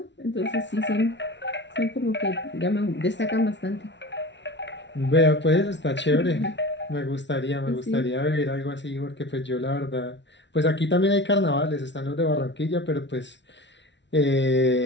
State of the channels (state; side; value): late; right; 0.52 ms